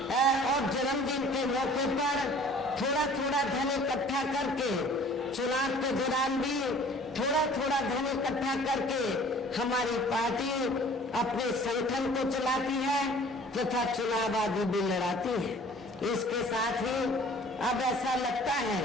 और जन्मदिन के मौके पर थोड़ा थोड़ा धन इकट्ठा करके चुनाव के दौरान भी थोड़ा थोड़ा धन इकट्ठा करके हमारी पार्टी अपने संगठन को चलाती है तथा चुनाव आदि भी लड़ाती है। इसके साथ ही अब ऐसा लगता है,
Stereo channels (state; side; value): normal; both; correlation 0.51